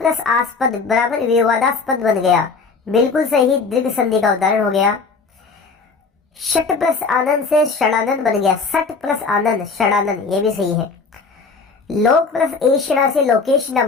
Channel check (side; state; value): right; quieter; 4.6 dB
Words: आस्पद बराबर विवादास्पद बन गया, बिल्कुल सही, दीर्घ संधि का उदाहरण हो गया। षट प्लस आनंद से षडानंद बन गया, सट प्लस आनंद षडानंद, ये भी सही है। लोक प्लस एषणा से लोकेश न